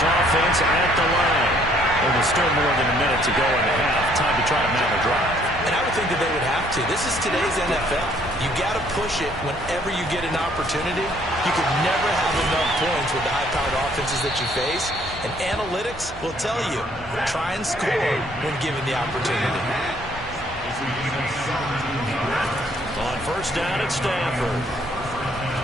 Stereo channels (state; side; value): normal; both; correlation 0.63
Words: offense at the line. And there's still more than a minute to go in the half. Time to try to mount a drive. And I would think that they would have to. This is today's NFL. You got to push it whenever you get an opportunity. You can never have enough points with the high-powered offenses that you face. And analytics will tell you, try and score when given the opportunity. On 1st down at Stafford.